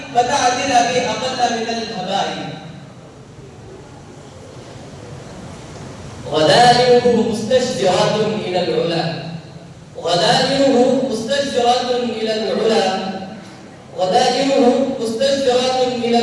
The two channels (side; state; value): both; identical; correlation 1.00